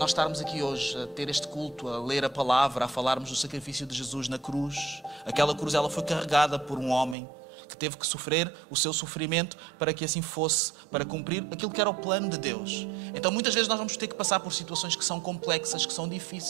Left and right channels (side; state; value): left; drops out; at 7.2 s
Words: estarmos aqui hoje, a ter este culto, a ler a palavra, a falarmos do sacrifício de Jesus na cruz. Aquela cruz, ela foi carregada por um homem que teve que sofrer o seu sofrimento para que assim fosse, para cumprir aquilo que era o plano de Deus. Então muitas vezes nós vamos ter que passar por situações que são complexas, que são